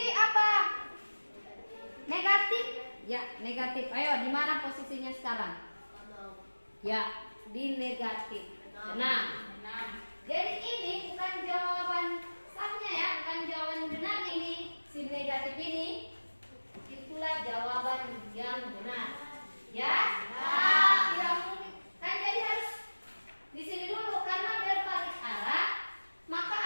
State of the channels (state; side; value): inverted; both; correlation -1.00